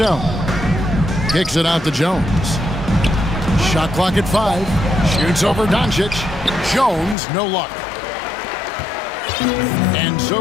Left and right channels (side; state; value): right; drops out; at 7.2 s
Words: Kicks it out to Jones. Shot clock at 5. Shoots over Doncic. Jones, no luck. And